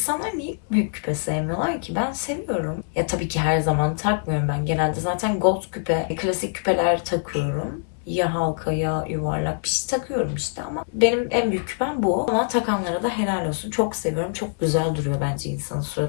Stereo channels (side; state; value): right; silent; 62 dB below the other